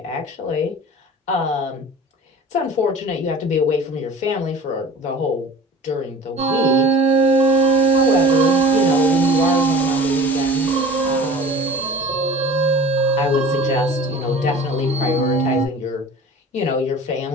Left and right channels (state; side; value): normal; both; correlation 0.41